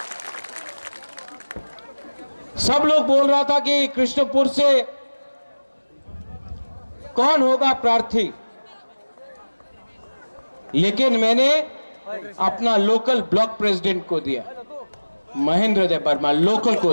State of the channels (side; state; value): both; inverted; correlation -1.00